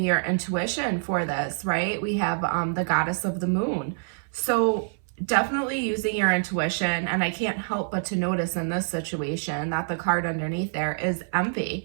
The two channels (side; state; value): left; silent; 61 dB below the other